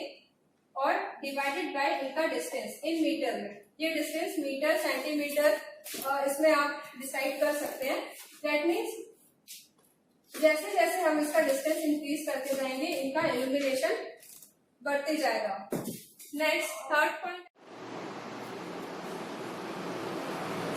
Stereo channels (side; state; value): both; identical; correlation 1.00